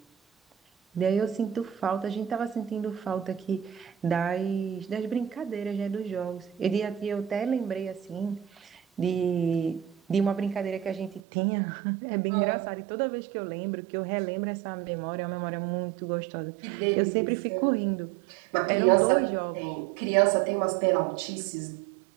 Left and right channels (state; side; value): drops out; left; at 11.2 s